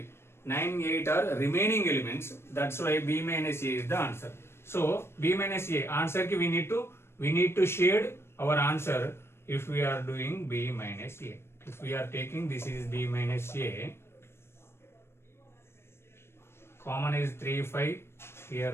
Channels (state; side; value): late; right; 0.12 ms